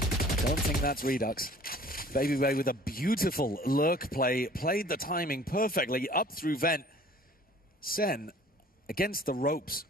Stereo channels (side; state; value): both; normal; correlation 0.51